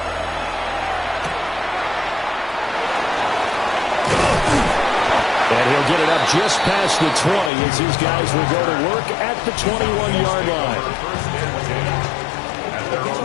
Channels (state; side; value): drops out; right; at 7.5 s